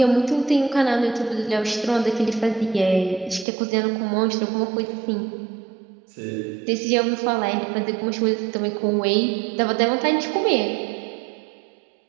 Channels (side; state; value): left; drops out; at 3.5 s